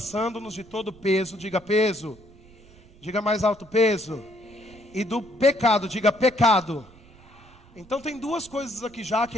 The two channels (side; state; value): right; noise; rumble, 24 dB below the sound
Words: de todo peso, diga peso, diga mais alto peso, e do pecado, diga pecado. Então tem duas coisas aqui já que